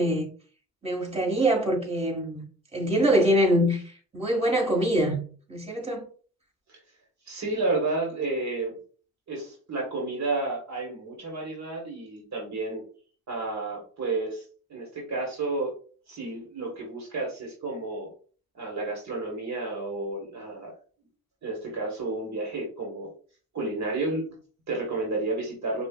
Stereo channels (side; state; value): both; normal; correlation 0.29